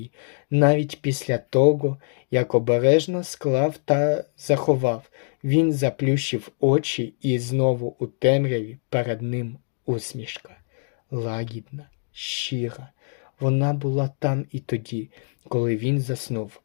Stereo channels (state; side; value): silent; right; digital silence